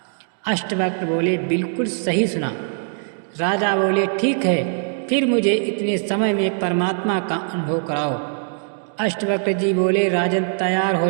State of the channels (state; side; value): silent; left; 63 dB below the other